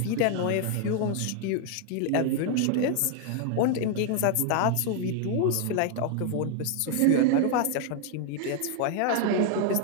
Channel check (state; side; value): different; both; correlation 0.00